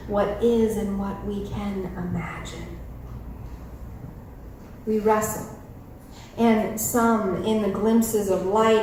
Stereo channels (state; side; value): identical; both; correlation 1.00